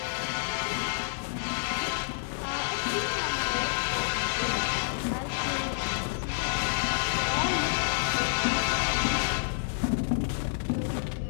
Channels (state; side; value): silent; right; digital silence